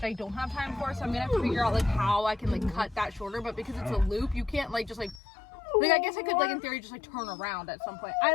I don't have time for. So I'm gonna have to figure out like how I can like cut that shorter. But because it's a loop, you can't like just like I guess I could like in theory just like turn around at some point. I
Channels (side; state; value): right; drops out; at 5.2 s